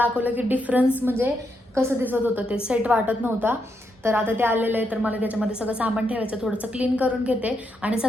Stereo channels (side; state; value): both; normal; correlation 0.81